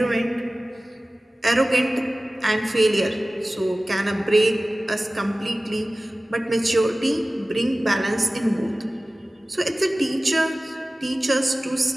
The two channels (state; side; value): normal; both; correlation 0.97